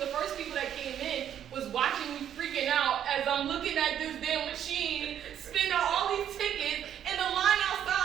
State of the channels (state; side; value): quieter; left; 9.9 dB